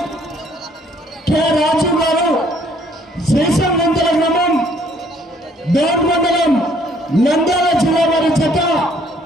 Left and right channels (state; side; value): normal; both; correlation 0.63